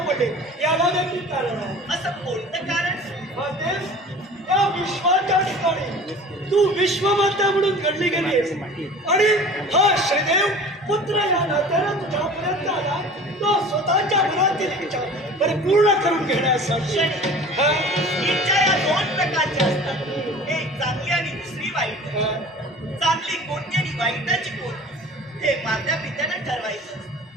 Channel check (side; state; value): both; normal; correlation 0.42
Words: पडले, याला देखील कारण आहे. असं कोणतं कारण? माते, या विश्वाच्या ठिकाणी तू विश्वमाता म्हणून घडली गेलीस आणि हा शनिदेव पुत्र या नात्यानं तुझ्यापर्यंत आला, तो स्वतःच्या मनातील इच्छा परिपूर्ण करून घेण्यासाठी. क्षणी हा. इच्छा या दोन प्रकारच्या असतात, एक चांगली आणि दुसरी वाईट. हा. चांगली कोणती आणि वाईटाची कोणती हे मात्या पित्यानं ठरवायचं.